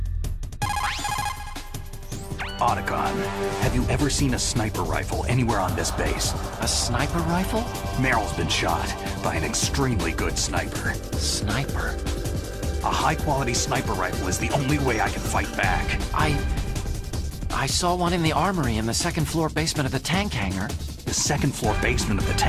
Otacon, have you ever seen a sniper rifle anywhere on this base? A sniper rifle? Meryl's been shot by an extremely good sniper. Sniper? A high-quality sniper rifle is the only way I can fight back. I saw one in the armory in the second-floor basement of the tank hangar. The second-floor basement of the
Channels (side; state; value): both; identical; correlation 1.00